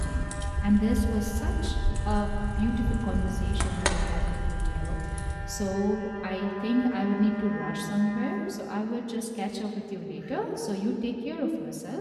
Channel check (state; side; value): identical; both; correlation 1.00